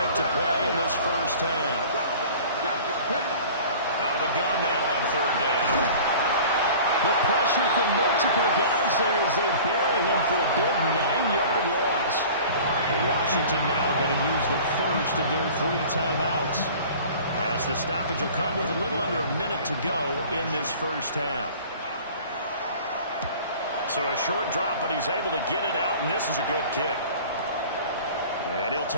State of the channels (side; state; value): both; inverted; correlation -0.44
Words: to play in this first half. Out of the gun now on 3rd down. The pressure from multiple guys there as they bury him for a big 9-yard loss. Washington now going to use the first of their 3 timeouts, as the stoppage will come with a little under a minute to go in this first half. So a short drop, but he's able to get it out, and this is a good kick. And he'll